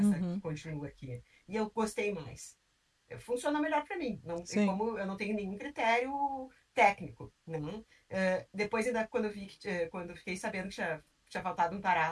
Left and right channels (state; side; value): identical; both; correlation 1.00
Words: que Uhum, continua aqui. E eu gostei mais. Funciona melhor para mim. Não, e sim. como eu não tenho nenhum critério técnico, né? Depois, ainda quando eu fiquei sabendo que tinha tinha faltado um